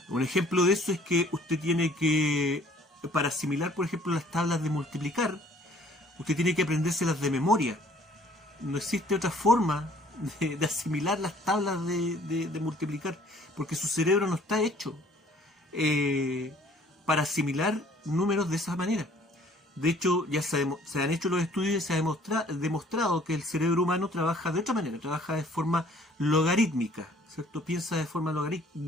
Un ejemplo de eso es que usted tiene que, para asimilar, por ejemplo, las tablas de multiplicar, usted tiene que aprendérselas de memoria. No existe otra forma de asimilar las tablas de multiplicar, porque su cerebro no está hecho para asimilar números de esa manera. De hecho, ya se han hecho los estudios y se ha demostrado que el cerebro humano trabaja de otra manera, trabaja de forma logarítmica, ¿cierto? Piensa de forma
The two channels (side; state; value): both; normal; correlation 0.57